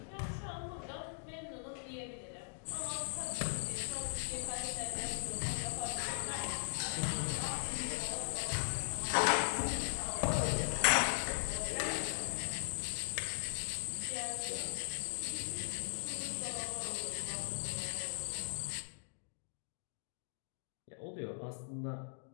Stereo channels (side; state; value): right; silent; 51 dB below the other